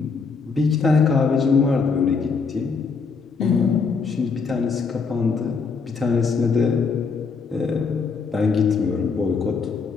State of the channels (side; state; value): right; quieter; 5.0 dB